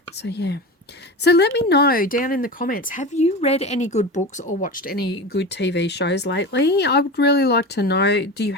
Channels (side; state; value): both; normal; correlation 0.27